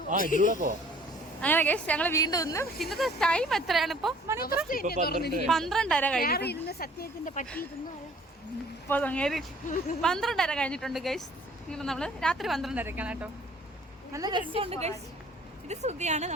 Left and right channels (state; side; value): normal; both; correlation 0.55